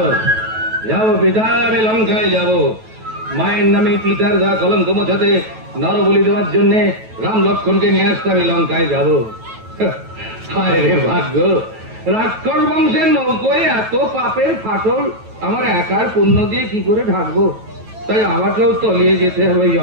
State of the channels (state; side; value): late; left; 9.2 ms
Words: যাবো পিতা, আমি লঙ্কায় যাব। মায়ের নামে পিতার গা কলঙ্ক মোছাতে, নরবলি দেওয়ার জন্য রাম লক্ষ্মণকে নিয়ে আসতে আমি লঙ্কায় যাব। হায় রে ভাগ্য, রাক্ষস বংশের নৌকোয় এত পাপের ফাটল আমার একার পুণ্য দিয়ে কি করে ঢাকবো? তাই আমাকেও তলিয়ে যেতে হবে